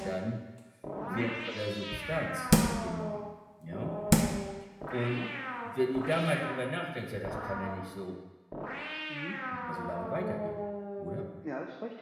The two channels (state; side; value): identical; both; correlation 1.00